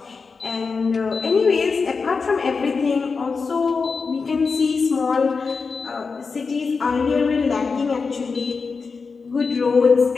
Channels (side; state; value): right; quieter; 4.8 dB